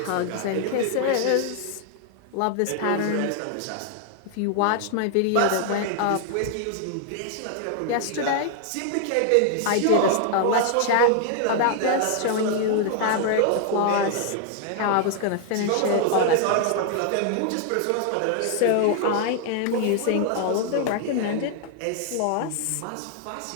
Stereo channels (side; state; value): both; different; correlation 0.00